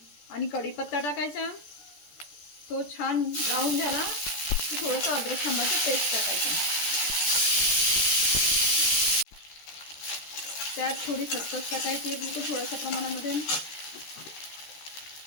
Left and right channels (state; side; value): late; right; 13 ms